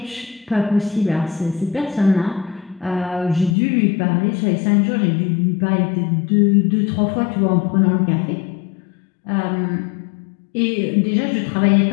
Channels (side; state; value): right; drops out; at 3.6 s